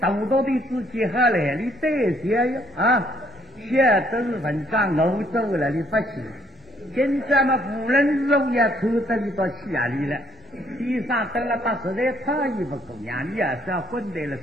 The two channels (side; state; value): both; normal; correlation 0.67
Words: 队自己好来，你对些呀现在都是文章欧洲了，你不去。现在嘛，无论肉也抽得你到气压里了。地上得了把实在差异不够呀，你也是要混在了